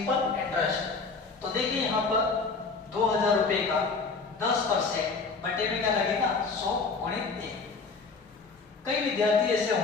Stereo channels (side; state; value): right; quieter; 4.5 dB